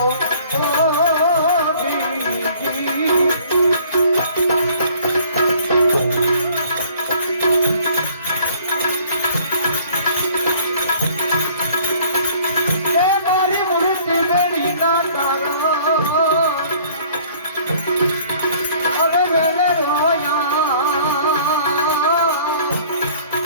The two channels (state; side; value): inverted; both; correlation -0.55